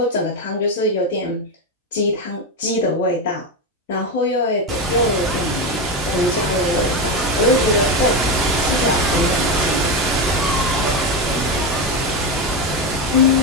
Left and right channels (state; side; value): normal; both; correlation 0.14